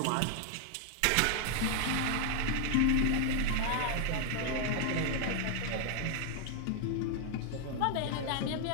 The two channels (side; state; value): both; different; correlation 0.00